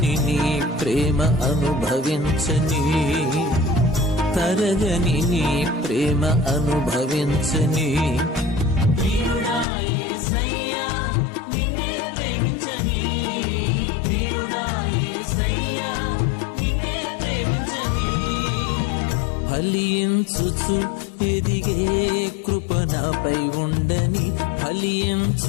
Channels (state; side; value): drops out; right; at 9.7 s